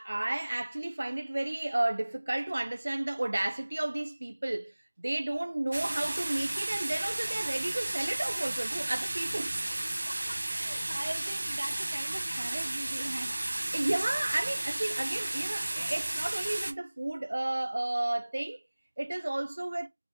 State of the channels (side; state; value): both; inverted; correlation -1.00